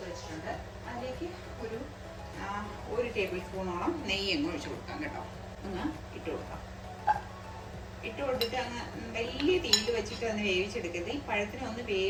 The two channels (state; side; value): identical; both; correlation 1.00